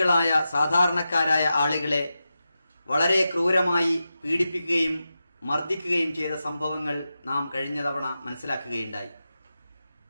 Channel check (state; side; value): inverted; both; correlation -0.91